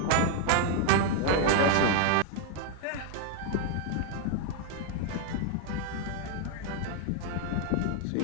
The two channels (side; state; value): both; different; correlation 0.00